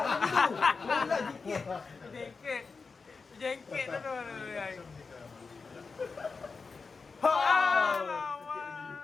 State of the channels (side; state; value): right; quieter; 4.6 dB